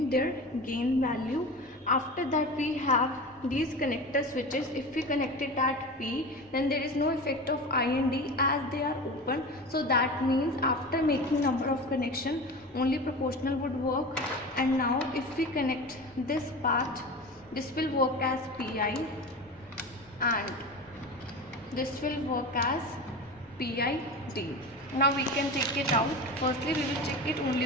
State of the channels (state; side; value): normal; both; correlation 0.30